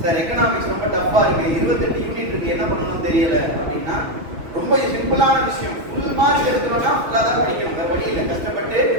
சார் எக்கனாமிக்ஸ் ரொம்ப டஃப்பா இருக்கு, 28 யூனிட் இருக்கு, என்ன பண்ணணும்னு தெரியல அப்படின்னா ரொம்ப சிம்பிளான விஷயம். ஃபுல் மார்க் எடுக்கிறோம்னா ஃபுல்லாக தான் படிக்கணும். வேற வழி இல்லை. கஷ்டப்பட்டு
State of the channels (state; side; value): late; left; 6.1 ms